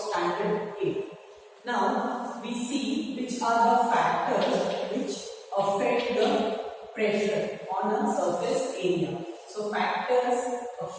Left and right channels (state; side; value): identical; both; correlation 1.00